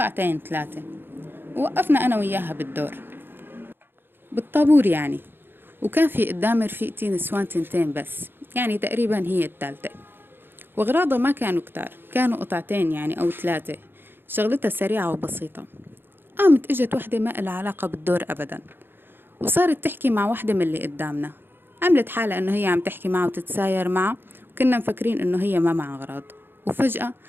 3. ووقفنا أنا وياها بالدور بالطابور يعني، وكان في قدام رفيقتي نسوان 2 بس، يعني تقريبا هي الثالثة. وأغراضها ما كانوا كتار، كانوا قطعتين يعني أو 3. شغلتها سريعة وبسيطة. قامت اجت وحدة ما لها علاقة بالدور أبدا، وصارت تحكي مع وحدة من اللي قدامنا. عملت حالة إنه هي عم تحكي معه وتتساير معه، وكنا مفكرين إنه هي ما معها أغراض. وفجأة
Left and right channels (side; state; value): left; late; 0.10 ms